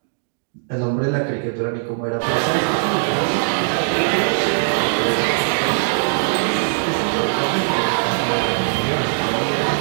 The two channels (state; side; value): silent; left; digital silence